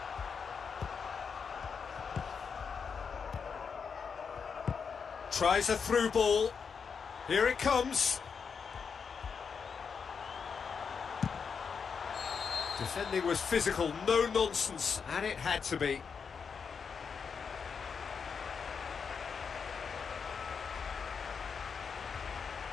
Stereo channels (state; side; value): quieter; right; 6.0 dB